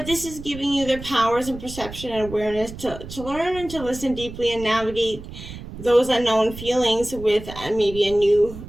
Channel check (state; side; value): noise; right; rumble, 13 dB below the sound